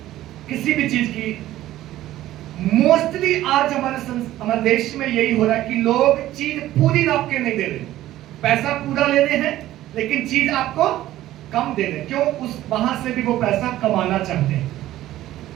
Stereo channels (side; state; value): left; quieter; 14.4 dB